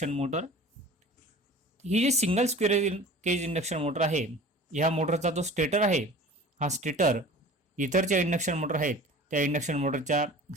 motor. ही जी single squirrel cage induction motor आहे, ह्या मोटरचा जो स्टेटर आहे, हा स्टेटर इतर जे इंडक्शन मोटर आहेत त्या इंडक्शन मोटरच्या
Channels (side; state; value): both; normal; correlation 0.41